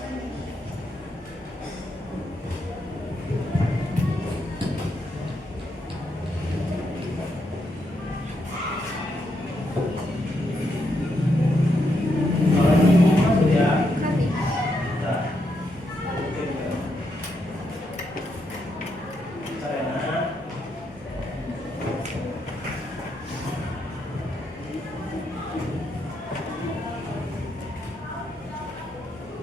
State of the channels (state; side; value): normal; both; correlation 0.80